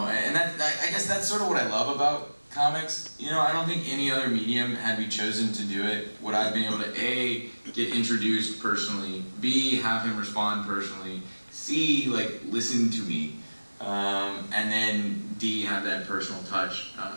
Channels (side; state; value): both; inverted; correlation -1.00